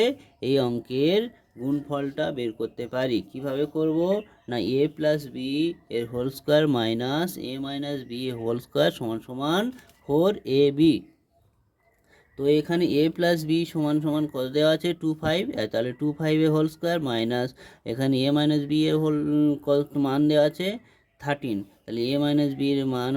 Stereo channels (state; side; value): identical; both; correlation 1.00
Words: এই অঙ্কের গুণফলটা বের করতে পারি। কিভাবে করব না, a প্লাস বি এর whole square minus a minus b এর হোল স্কোয়ার সমান সমান 4ab। তো এখানে a প্লাস বি সমান সমান কত দেওয়া আছে 2, 5। তাহলে 2, 5 এর হোল স্কোয়ার মাইনাস এখানে a মাইনাস বি এর হোল কত মান দেওয়া আছে 13। তাহলে a মাইনাস বি এর মান